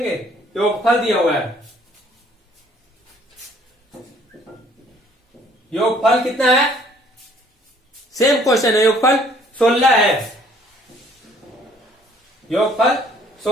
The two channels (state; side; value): normal; both; correlation 0.59